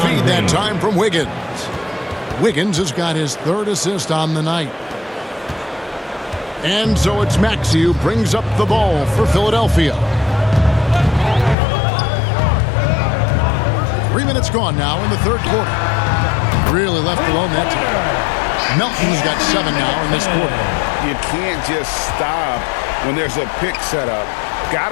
that time from Wiggins. Wiggins has got his 3rd assist on the night. And so it's Maxey who brings up the ball for Philadelphia. 3 minutes gone now in the 3rd quarter. Really left alone that time. Melton's got 7 now in this quarter. You can't just stop when there's a pick set up.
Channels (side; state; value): right; drops out; at 11.6 s